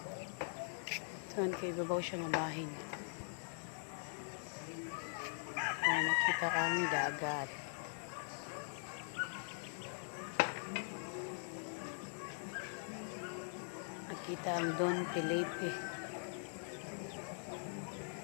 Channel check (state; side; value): silent; right; digital silence